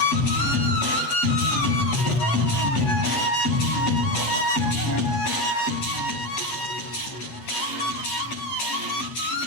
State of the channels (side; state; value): right; late; 7.8 ms